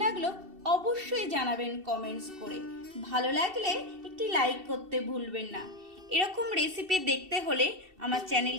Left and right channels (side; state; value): left; late; 2.7 ms